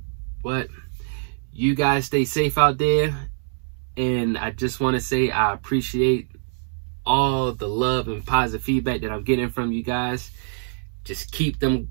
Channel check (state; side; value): silent; left; 61 dB below the other